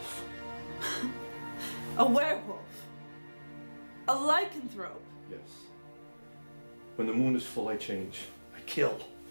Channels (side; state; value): both; inverted; correlation -1.00